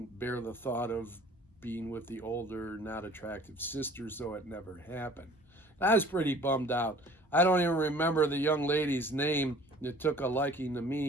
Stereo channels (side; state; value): both; normal; correlation 0.50